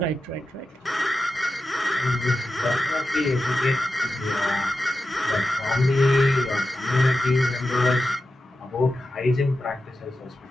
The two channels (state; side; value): normal; both; correlation 0.91